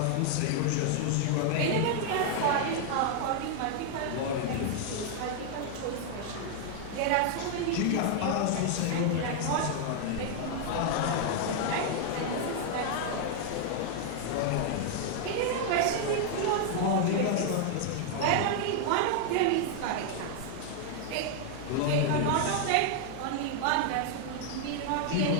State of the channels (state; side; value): different; both; correlation 0.00